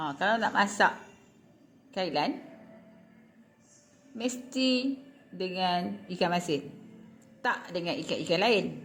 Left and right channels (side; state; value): both; identical; correlation 1.00